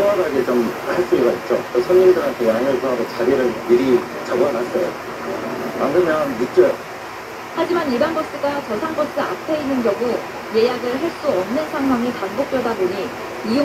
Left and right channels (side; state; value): both; identical; correlation 1.00